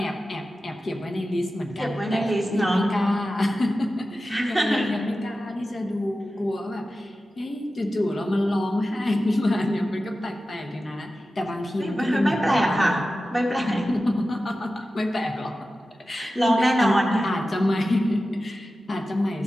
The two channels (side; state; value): both; normal; correlation 0.94